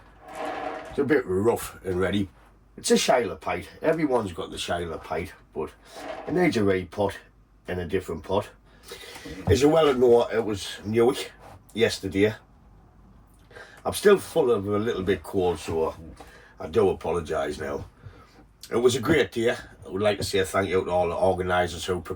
It's a bit rough and ready. It's a Shiloh pite. Everyone's got the Shiloh pite, but it needs a repot in a different pot. As you well know, it was Newick yesterday. I'm still full of a little bit cold, so I do apologise now. It was a great day. I would like to say thank you to all the organisers who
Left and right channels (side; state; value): both; identical; correlation 1.00